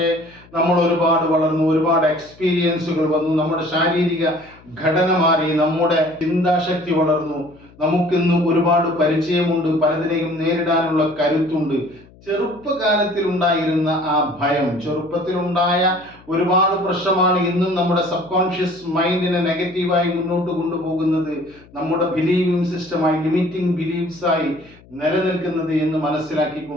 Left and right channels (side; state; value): left; noise; hum, 25 dB below the sound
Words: നമ്മൾ ഒരുപാട് വളർന്നു, ഒരുപാട് എക്സ്പീരിയൻസുകൾ വന്നു, നമ്മുടെ ശാരീരിക ഘടന മാറി, നമ്മുടെ ചിന്താശക്തി വളർന്നു, നമുക്കിന്ന് ഒരുപാട് പരിചയമുണ്ട്, പലതിനെയും നേരിടാനുള്ള കരുത്തുണ്ട്. ചെറുപ്പകാലത്തിൽ ഉണ്ടായിരുന്ന ആ ഭയം, ചെറുപ്പത്തിലുണ്ടായ ഒരുപാട് പ്രശ്നമാണ് ഇന്നും നമ്മുടെ സബ് കോൺഷ്യസ് മൈൻഡിനെ നെഗറ്റീവായി മുന്നോട്ട് കൊണ്ടുപോകുന്നത്, നമ്മുടെ ബിലീവിംഗ് സിസ്റ്റമായി, ലിമിറ്റിംഗ് ബിലീഫ്സ് ആയി നിലനിൽക്കുന്നത് എന്ന്